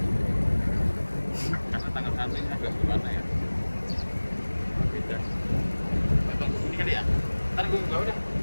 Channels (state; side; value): inverted; both; correlation -1.00